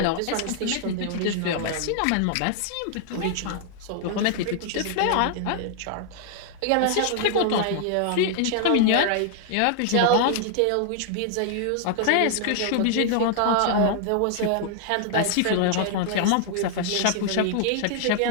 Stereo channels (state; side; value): different; both; correlation 0.00